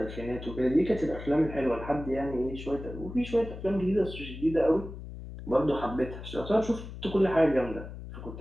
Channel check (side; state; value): left; noise; hum, 11 dB below the sound